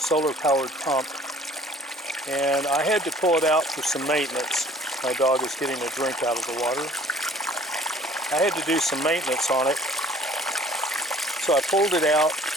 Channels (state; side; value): normal; both; correlation 0.53